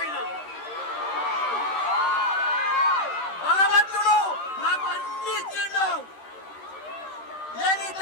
అయినా భగవంతుడు నాకు అన్ని ఇచ్చిండు. నేను ఈ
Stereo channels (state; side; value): late; right; 13 ms